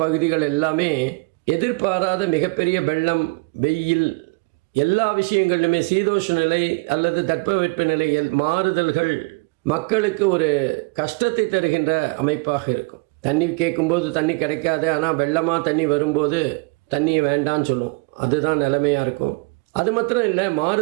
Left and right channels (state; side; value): quieter; left; 29.8 dB